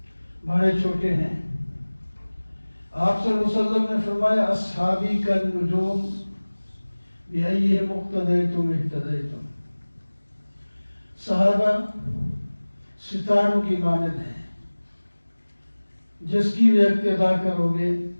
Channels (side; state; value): both; inverted; correlation -1.00